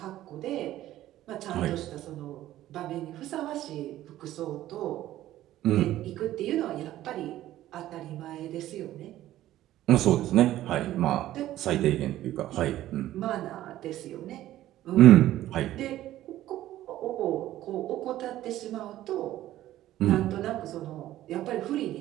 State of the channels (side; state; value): left; quieter; 14.0 dB